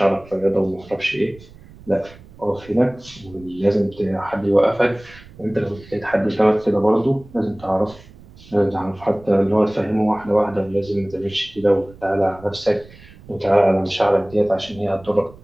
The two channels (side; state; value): right; noise; rumble, 22 dB below the sound